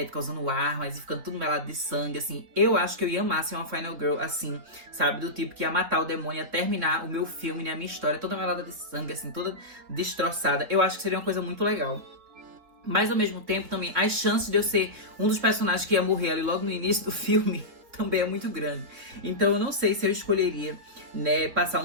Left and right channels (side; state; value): left; late; 3.9 ms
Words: usando armas e ficando tudo melado de sangue, assim. Eu acho que eu ia amar ser uma Final Girl, assim, sabe? Do tipo que ia matar o demônio, ia terminar o meu filme, né, a minha história, toda melada de sangue, assim, toda destroçada. Eu acho que seria uma coisa muito legal. Mas, ao mesmo tempo, também, as chances de eu ser um dos personagens que ia morrer ali logo no início do filme também é muito grande. Então, eu não sei se eu escolheria, né, passar